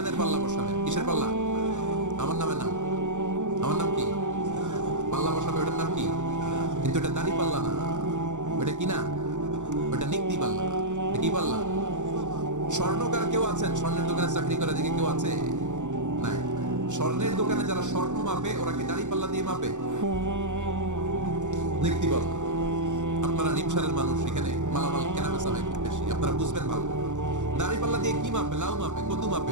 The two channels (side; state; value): left; late; 0.85 ms